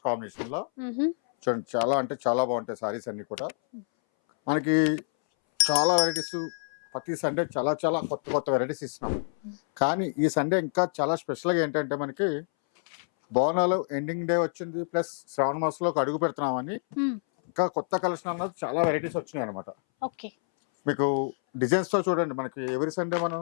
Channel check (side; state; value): right; silent; 60 dB below the other